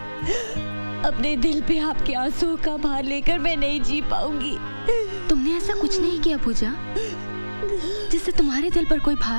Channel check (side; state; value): both; inverted; correlation -1.00